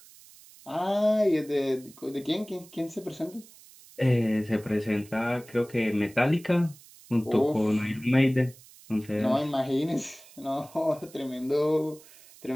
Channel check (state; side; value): noise; right; hiss, 23 dB below the sound